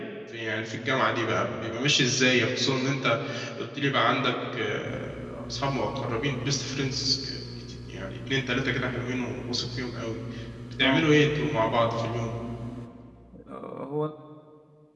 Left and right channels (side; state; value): both; identical; correlation 1.00